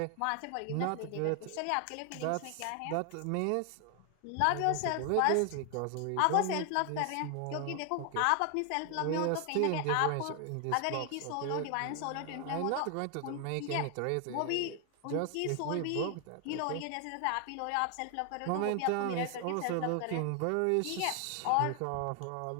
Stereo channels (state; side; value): different; both; correlation 0.00